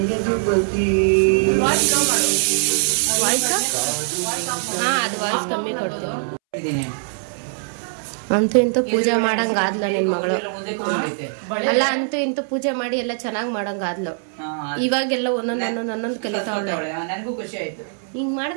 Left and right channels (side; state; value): left; silent; 65 dB below the other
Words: ವಾಯ್ಸ್ ಅದು ವಾಯ್ಸ್ ಕಮ್ಮಿ ಕೊಡ್ತೀನಿ. ಅಂತೂ ಇಂತೂ ಪೂಜೆ ಮಾಡಂಗಾದ್ಲ ನಿನ್ ಮಗಳು. ಅಲ್ಲ, ಅಂತೂ ಇಂತೂ ಪೂಜೆ ಮಾಡಿ ಎಲ್ಲ ಚೆನ್ನಾಗ್ ಮಾಡಂಗಾದ್ಲು. ಇವಾಗೆಲ್ಲ ಒಂದೊಂದು ಕಲಿತಾವಳೆ. ಹಿಂಗ್